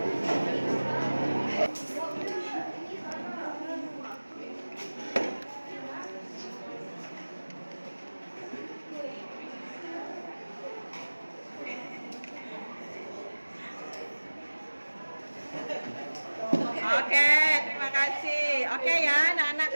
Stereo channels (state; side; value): inverted; both; correlation -1.00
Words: Oke, terima kasih. Oke ya, anak-anak